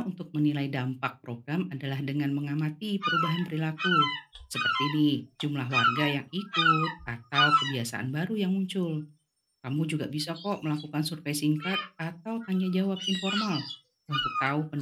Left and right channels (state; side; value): identical; both; correlation 1.00